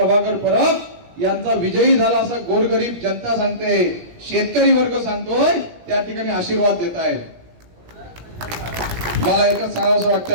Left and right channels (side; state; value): left; late; 17 ms